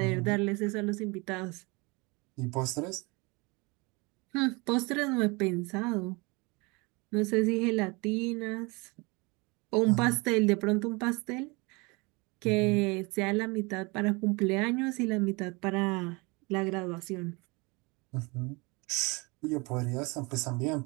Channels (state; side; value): quieter; left; 27.3 dB